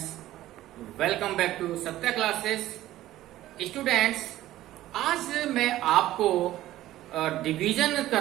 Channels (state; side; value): quieter; left; 14.6 dB